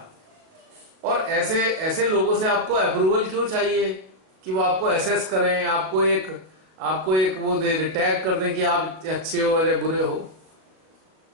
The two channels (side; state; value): left; late; 37 ms